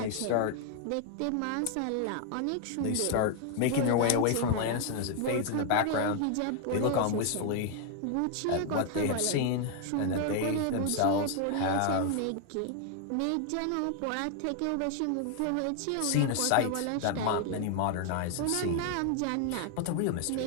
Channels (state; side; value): different; both; correlation 0.00